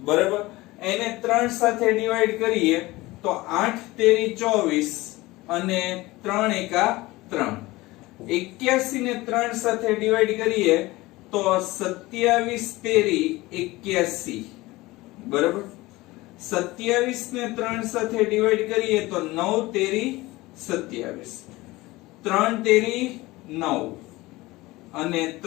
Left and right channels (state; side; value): quieter; right; 20.0 dB